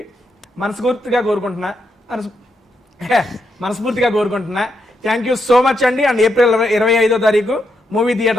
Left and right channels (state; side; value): normal; both; correlation 0.81